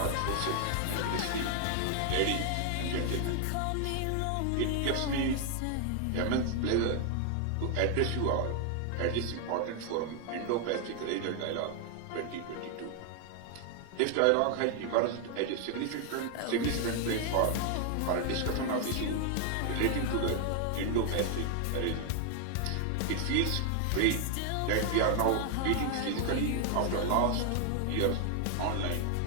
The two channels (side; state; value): both; different; correlation 0.00